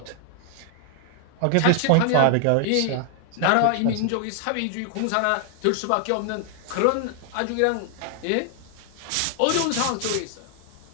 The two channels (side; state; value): both; different; correlation 0.00